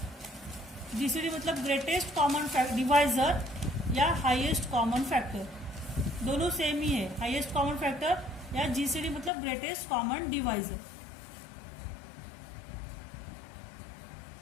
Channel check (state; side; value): drops out; right; at 9.3 s